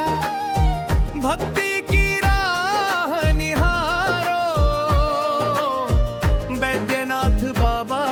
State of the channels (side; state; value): both; identical; correlation 1.00